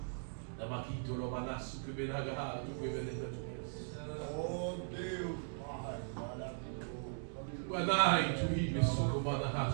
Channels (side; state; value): left; silent; digital silence